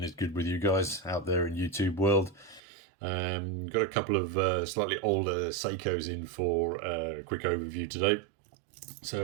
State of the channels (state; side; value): drops out; left; at 2.6 s